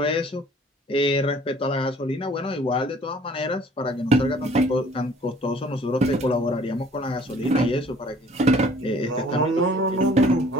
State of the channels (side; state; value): both; normal; correlation 0.54